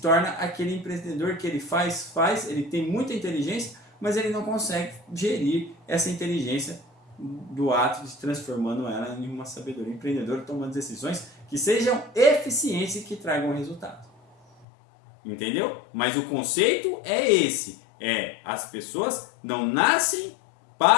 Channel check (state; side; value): drops out; right; at 14.7 s